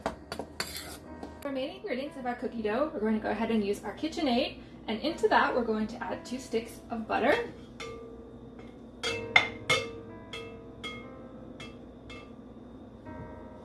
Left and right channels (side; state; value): both; identical; correlation 1.00